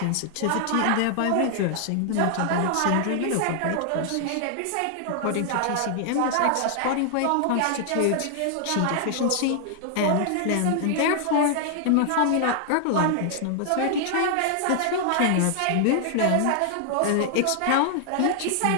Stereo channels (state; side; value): different; both; correlation 0.00